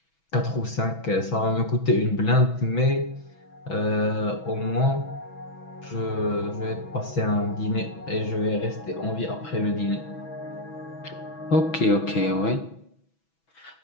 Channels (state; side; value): late; right; 6.1 ms